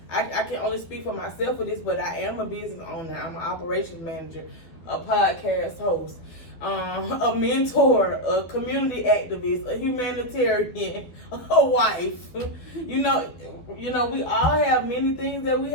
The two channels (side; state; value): right; late; 12 ms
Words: can only speak for myself with this, but I am a business owner. I'm an operations manager, a podcast host, a mentor, a community activist, a humanitarian, a wife. You know, we all have many things that we